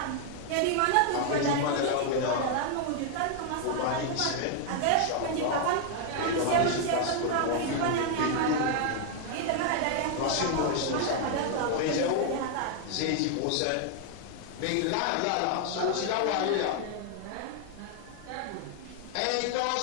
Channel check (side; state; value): both; different; correlation 0.00